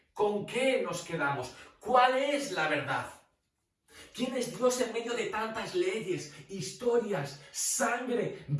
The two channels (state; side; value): identical; both; correlation 1.00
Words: ¿Con qué nos quedamos? ¿Cuál es la verdad? ¿Quién es Dios en medio de tantas leyes, historias, sangre,